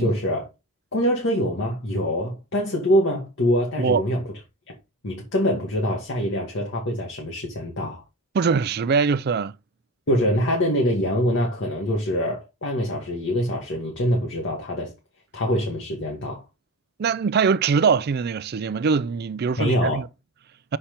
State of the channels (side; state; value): both; normal; correlation 0.27